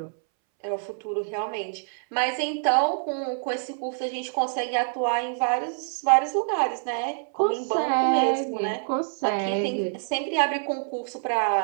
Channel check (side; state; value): left; silent; 61 dB below the other